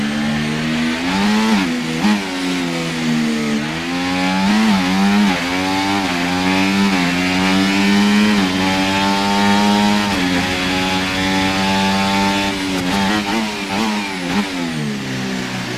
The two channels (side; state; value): both; identical; correlation 1.00